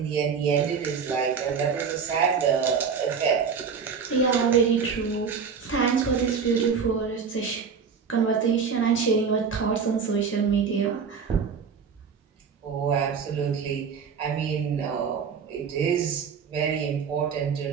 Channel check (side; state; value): left; quieter; 6.1 dB